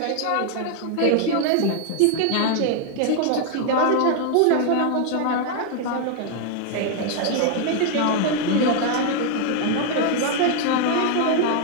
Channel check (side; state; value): both; different; correlation 0.00